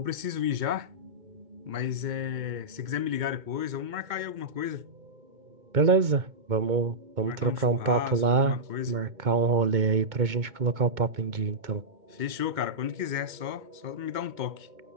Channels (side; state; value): left; late; 2.2 ms